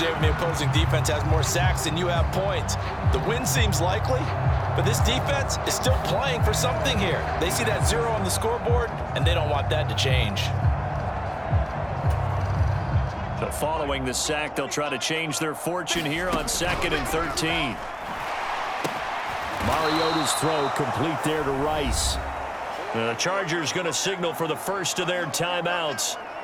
when the opposing defense has more sacks than you have points. The win seems likely, but this defense is still playing for something here. They see that 0 on the scoreboard, and they don't want that to change. So following the sack, they'll try to change their fortune here on 2nd and 13. Mariota's throw complete there to Rice. The Chargers going to signal for the first of their timeouts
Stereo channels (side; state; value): both; identical; correlation 1.00